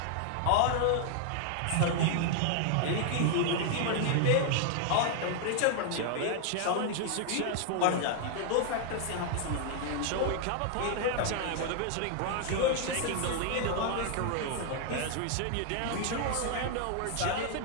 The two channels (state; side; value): different; both; correlation 0.00